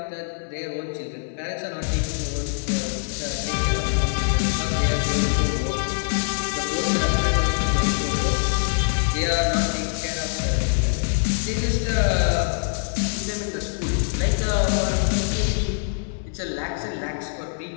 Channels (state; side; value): silent; right; 61 dB below the other